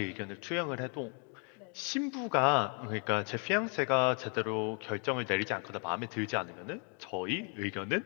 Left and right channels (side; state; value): right; quieter; 38.8 dB